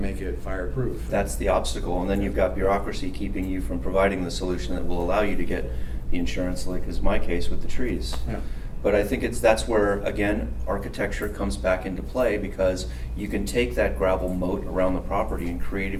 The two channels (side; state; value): both; identical; correlation 1.00